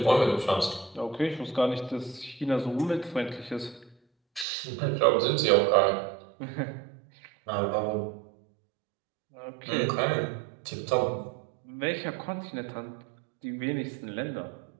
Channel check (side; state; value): left; drops out; at 4.5 s